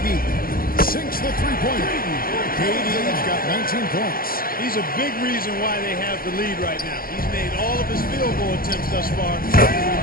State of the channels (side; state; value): right; late; 0.42 ms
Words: sinks the three-pointer. KD's got 19 points. He's a big reason why they have the lead right now. He's made all of his field goal attempts thus far. He